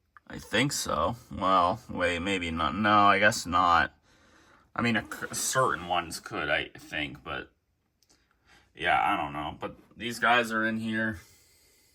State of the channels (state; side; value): identical; both; correlation 1.00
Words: I think so. Well, wait, maybe not. No, I guess not. I mean, certain ones could, I think, but, yeah, I don't know. But these guys are in here.